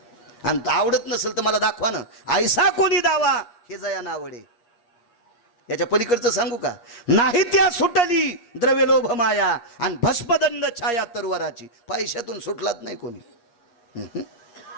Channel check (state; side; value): late; right; 8.5 ms